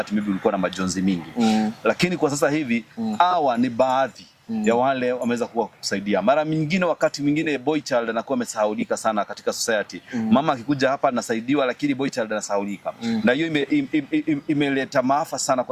maybe ulikuwa na majonzi mingi. Lakini kwa sasa hivi hawa ni baadhi ya wale wameweza kuwa kusaidia. Mara nyingine wakati mwingine boy child anakuwa amesahaulika sana katika society. Mama akikuja hapa anasaidiwa lakini boy child anasahaulika. Na hiyo imeleta maafa sana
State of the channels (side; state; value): both; identical; correlation 1.00